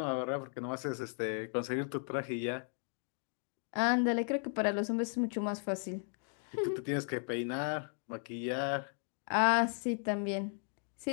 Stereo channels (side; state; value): right; silent; 54 dB below the other